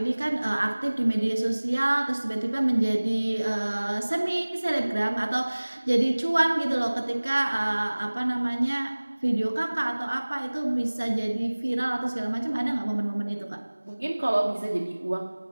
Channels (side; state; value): both; inverted; correlation -1.00